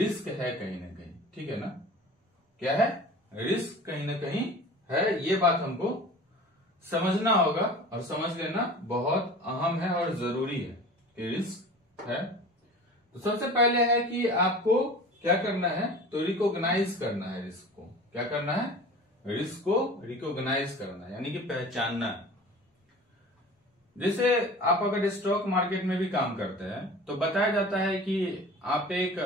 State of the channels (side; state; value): both; normal; correlation 0.40